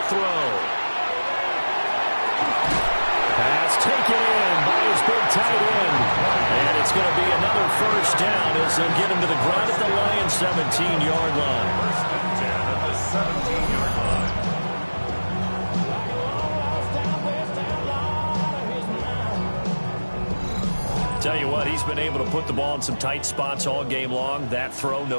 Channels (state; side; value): inverted; both; correlation -1.00